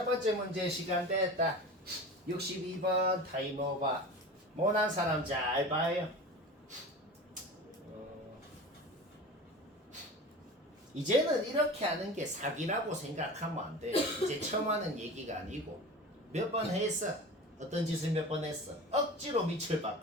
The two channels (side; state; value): both; normal; correlation 0.34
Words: 번째 문제 시간 됐다. 62번 타임오버. 못한 사람 잘 봐요. 이제는 이렇게 하는 게 사기라고 생각하면 안 돼요. 이제 처음 하는 얘기가 아니고 몇 번 했어. 어떤 짓을 몇 번 했어. 억지로 밑을